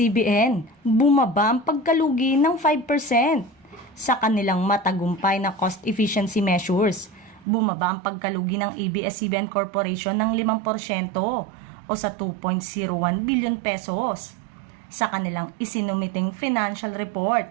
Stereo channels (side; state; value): left; drops out; at 7.5 s